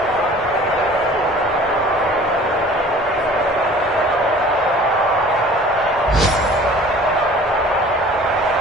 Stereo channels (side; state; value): both; normal; correlation 0.47